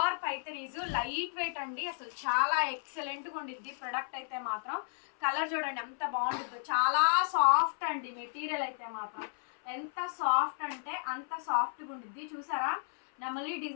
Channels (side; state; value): right; silent; 55 dB below the other